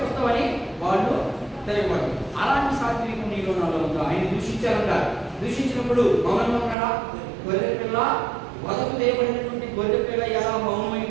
వస్తావని వాళ్ళు తెలియబడదు. అలాంటి సాత్వికం నీలో నాలో ఉందా? ఆయన దూషించారంట. దూషించినప్పుడు మౌనంగా ఉన్నాడా? గొర్రె పిల్ల వదకు చేయబడినటువంటి గొర్రె పిల్ల ఎలా మౌనమై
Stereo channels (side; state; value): left; drops out; at 6.8 s